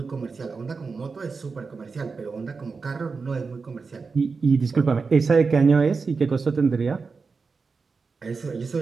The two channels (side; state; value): left; quieter; 4.7 dB